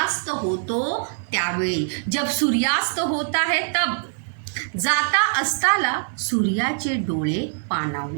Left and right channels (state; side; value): silent; left; digital silence